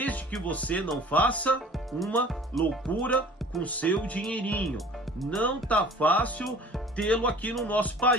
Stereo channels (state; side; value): normal; both; correlation 0.46